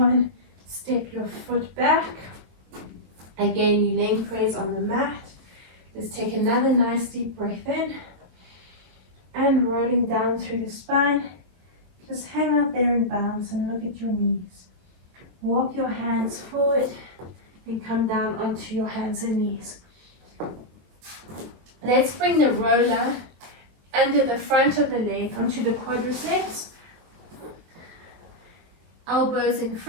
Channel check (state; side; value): late; left; 23 ms